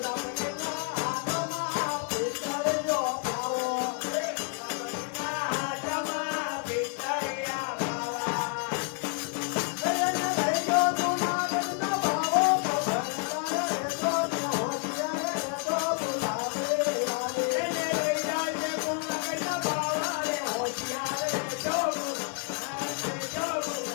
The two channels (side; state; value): right; quieter; 37.4 dB